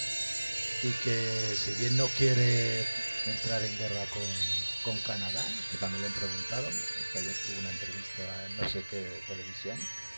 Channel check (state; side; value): inverted; both; correlation -1.00